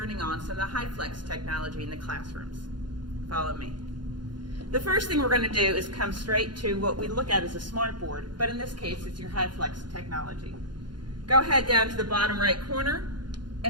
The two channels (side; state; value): left; late; 0.71 ms